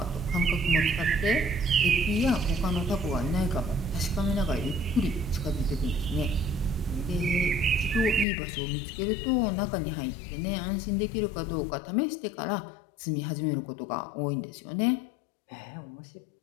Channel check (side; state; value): right; drops out; at 8.2 s